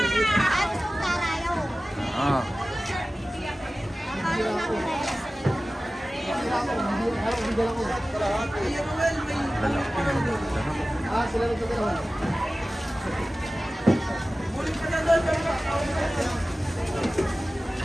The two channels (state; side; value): normal; both; correlation 0.96